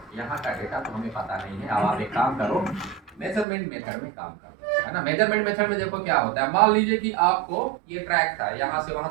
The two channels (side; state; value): left; drops out; at 3.5 s